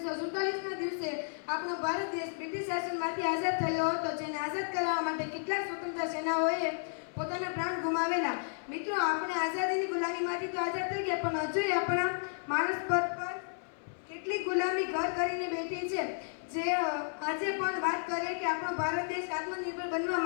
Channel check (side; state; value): right; silent; 56 dB below the other